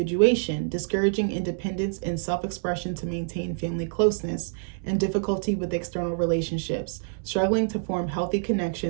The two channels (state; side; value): silent; left; 60 dB below the other